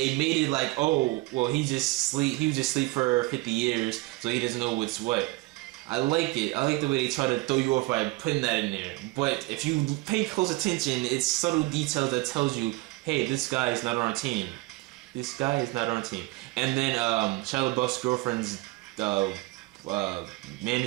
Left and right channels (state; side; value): quieter; left; 21.5 dB